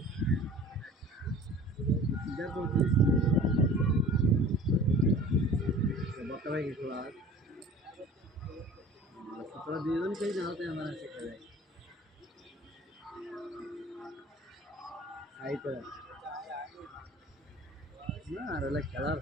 দেখো বর্তমানে কিছু আর তোরা দুজন খেয়ে না হতে আমার শেখা যায় তাই তো না আর হলে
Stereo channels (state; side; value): normal; both; correlation 0.44